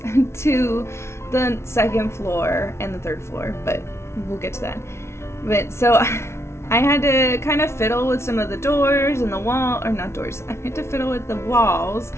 to the second floor and the third floor, but we'll get to that. But so I had to kind of fiddle with some of the doors and the wall, or not doors, I had to fiddle with the walls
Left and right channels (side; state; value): right; late; 0.13 ms